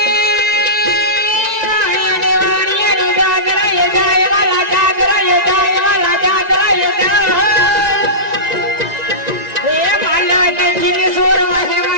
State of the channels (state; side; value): late; left; 1.9 ms